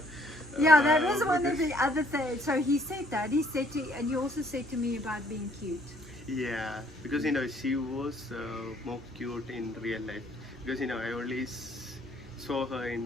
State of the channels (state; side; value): normal; both; correlation 0.63